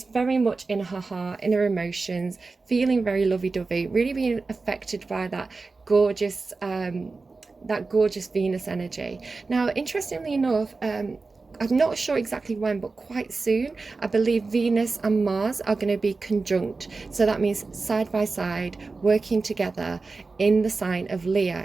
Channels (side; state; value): left; quieter; 3.9 dB